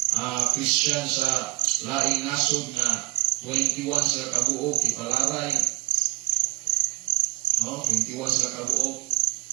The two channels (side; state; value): left; quieter; 25.5 dB